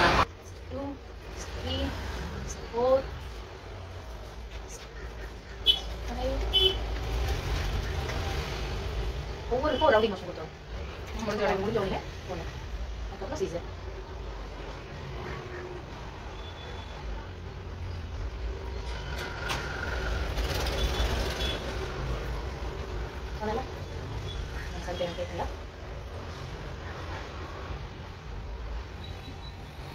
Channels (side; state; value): both; identical; correlation 1.00